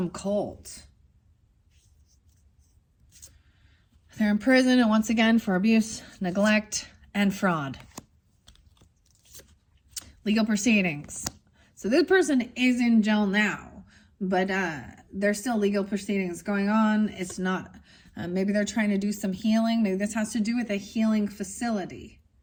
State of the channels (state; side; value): identical; both; correlation 1.00